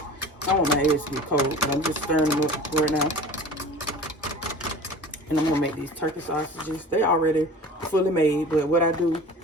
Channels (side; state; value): both; normal; correlation 0.40